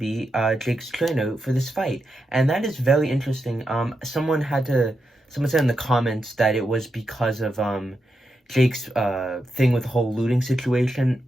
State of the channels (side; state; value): both; normal; correlation 0.86